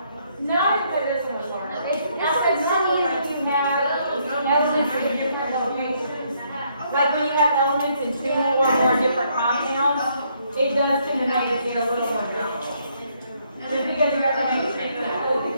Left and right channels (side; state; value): both; inverted; correlation -0.71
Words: No, but this one was harder. It's funny if you have elements in different locations. Like when you have elements in 2 or more different compounds, it does tend to make it a little more difficult. Just because you have to make sure that the